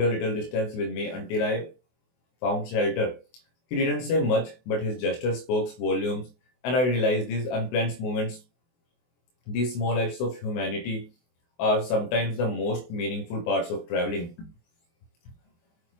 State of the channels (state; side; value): late; right; 24 ms